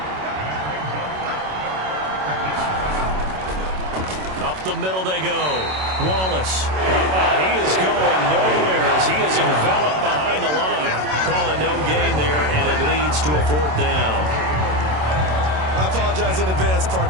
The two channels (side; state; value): left; late; 27 ms